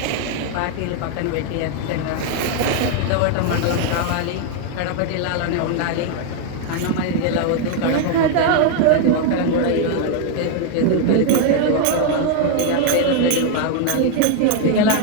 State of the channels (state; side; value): different; both; correlation 0.00